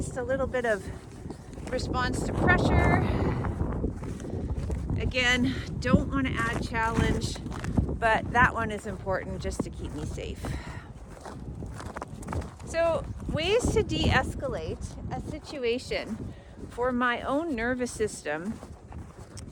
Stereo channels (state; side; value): identical; both; correlation 1.00